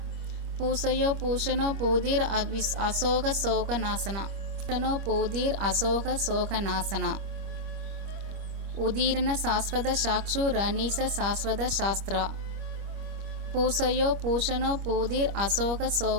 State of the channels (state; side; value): late; left; 25 ms